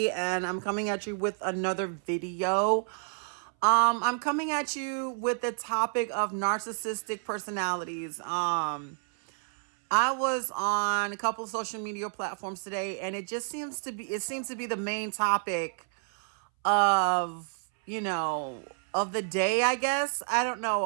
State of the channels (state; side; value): silent; left; 58 dB below the other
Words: and I'm coming at you with another video. I'm coming at you with the topic of narcissistic personalities. I was on a couple of social media platforms today, and it seems to be the main topic of, of the day, I guess. I don't